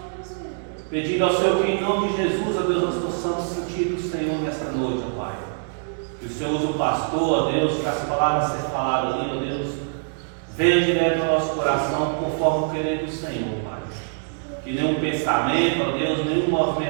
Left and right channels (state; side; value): silent; left; digital silence